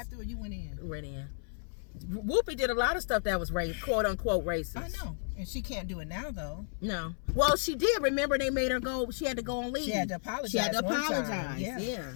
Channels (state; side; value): silent; right; 56 dB below the other